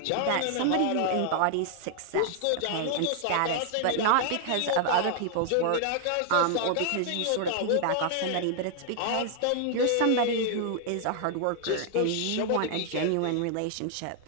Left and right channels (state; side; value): different; both; correlation 0.00